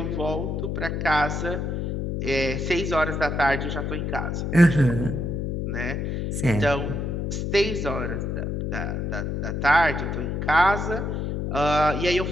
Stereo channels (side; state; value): left; noise; hum, 2 dB below the sound